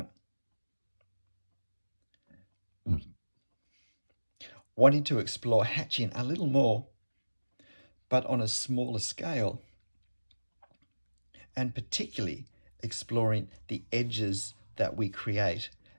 Wanting to explore hatching a little more, but on a smaller scale, and particularly exploring the edges that we create.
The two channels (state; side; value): inverted; both; correlation -1.00